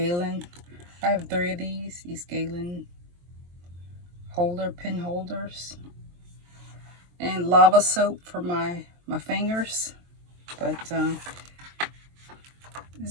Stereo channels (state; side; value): late; left; 23 ms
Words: I have 3 of these Galen pen holders. And lava soap for my fingers. But